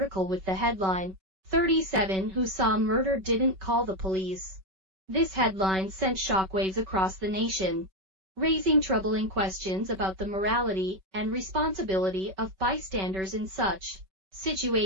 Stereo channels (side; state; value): left; late; 5.3 ms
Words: with the headline, "37 Who Saw Murder Didn't Call the Police." This headline sent shockwaves across the nation, raising troubling questions about the morality and responsibility of bystanders in such